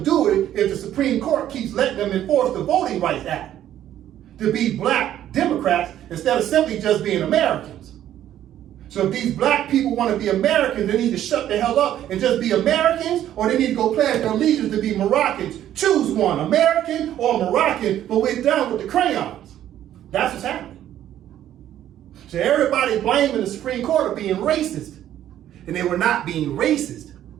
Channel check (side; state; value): left; quieter; 11.7 dB